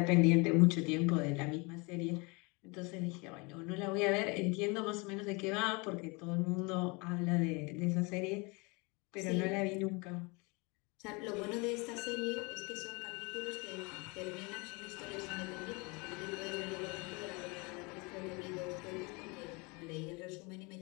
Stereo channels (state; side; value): quieter; right; 28.6 dB